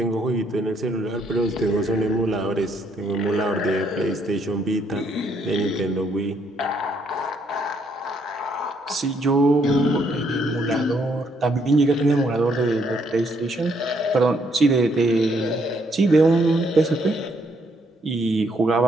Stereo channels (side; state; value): both; normal; correlation 0.71